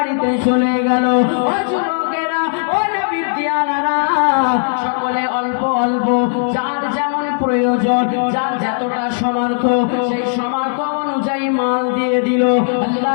চলে গেল। ও যুবকেরা, ও নবীর দিয়ানারা, সকলে অল্প অল্প যার যেমন প্রয়োজন, যার যতটা সামর্থ্য, সেই সামর্থ্য অনুযায়ী মাল দিয়ে দিল।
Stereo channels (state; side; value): silent; right; digital silence